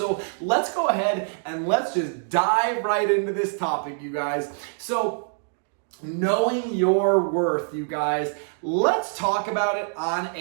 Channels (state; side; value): silent; left; digital silence